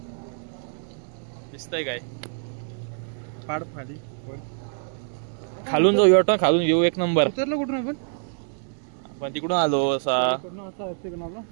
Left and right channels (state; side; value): silent; left; 61 dB below the other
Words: दिसतंय काय. पाड खाली खालून जाऊ वाटतं. खालून येऊ एक नंबर. उतरलं कुठून आपण. पण तिकडून आलो असा